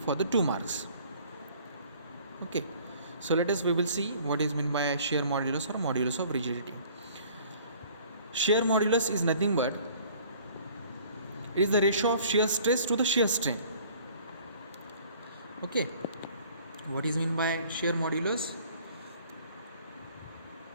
the 2 marks. Okay, so we will see what is meant by shear modulus or modulus of rigidity. Shear modulus is nothing but it is the ratio of shear stress to the shear strain. Okay, what is meant by shear modulus?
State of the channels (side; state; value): both; inverted; correlation -0.53